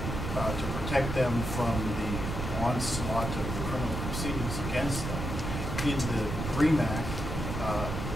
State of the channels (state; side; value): noise; right; rumble, 4 dB below the sound